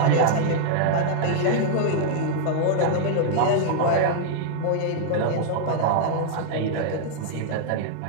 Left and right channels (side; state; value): both; different; correlation -0.01